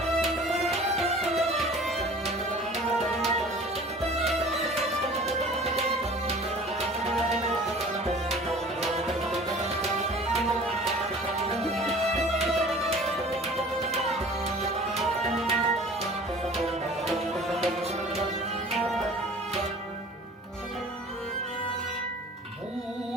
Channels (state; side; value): normal; both; correlation 0.45